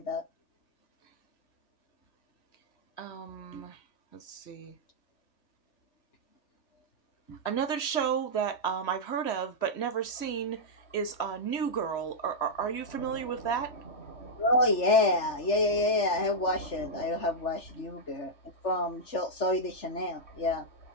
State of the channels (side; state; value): right; late; 3.4 ms